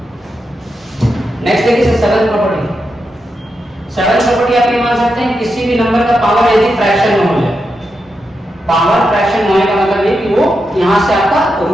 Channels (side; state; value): both; normal; correlation 0.86